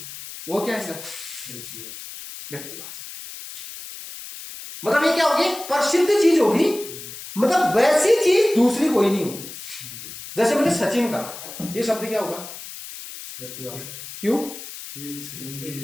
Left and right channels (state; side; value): noise; left; hiss, 12 dB below the sound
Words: वो क्या है? व्यक्तिवाचक है। मतलब ये क्या होगी? प्रसिद्ध चीज होगी, मतलब वैसी चीज दूसरी कोई नहीं होगी। जैसे मैंने सचिन का, ये शब्द क्या होगा? क्यों?